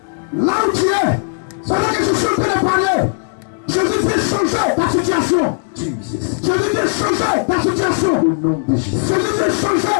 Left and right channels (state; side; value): silent; right; digital silence